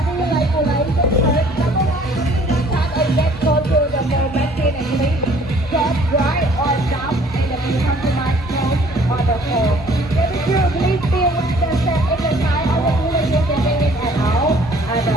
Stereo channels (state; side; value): normal; both; correlation 0.56